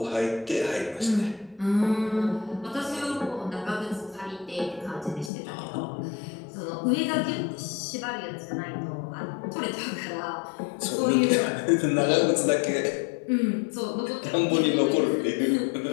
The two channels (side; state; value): right; drops out; at 5.3 s